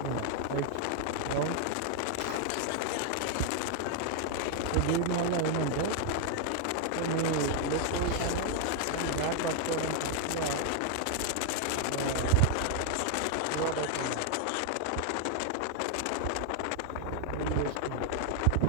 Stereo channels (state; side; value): different; both; correlation 0.00